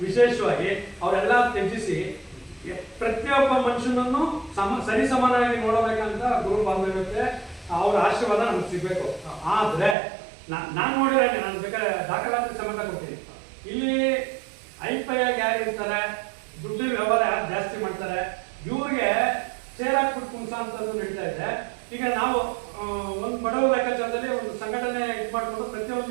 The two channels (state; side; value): drops out; left; at 10.0 s